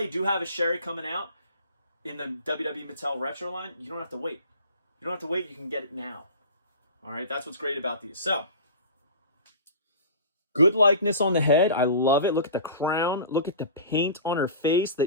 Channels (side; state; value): both; inverted; correlation -0.37